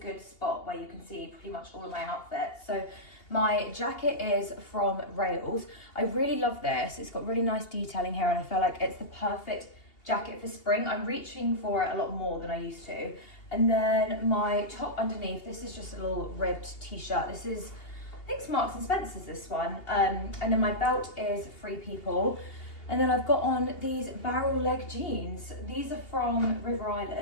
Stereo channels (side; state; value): right; late; 2.8 ms